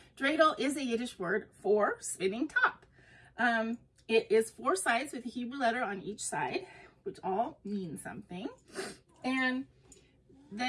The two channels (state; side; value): identical; both; correlation 1.00